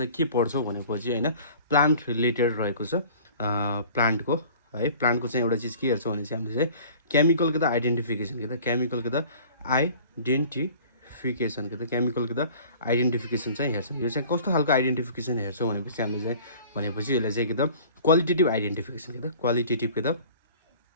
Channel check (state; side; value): inverted; both; correlation -0.47